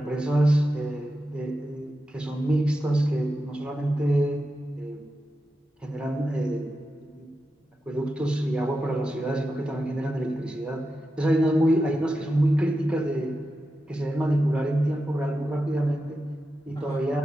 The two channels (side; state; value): both; normal; correlation 0.90